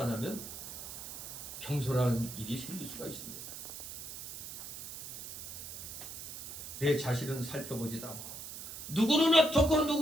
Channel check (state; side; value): noise; right; hiss, 9 dB below the sound